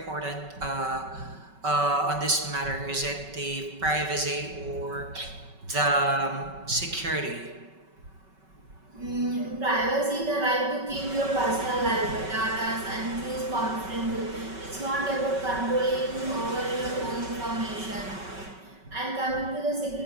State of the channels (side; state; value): left; late; 5.3 ms